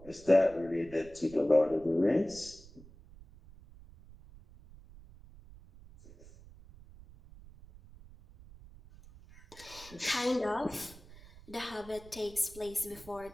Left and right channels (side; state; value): right; noise; rumble, 20 dB below the sound